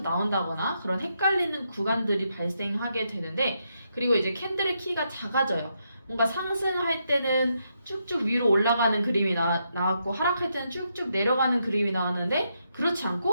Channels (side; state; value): both; inverted; correlation -0.80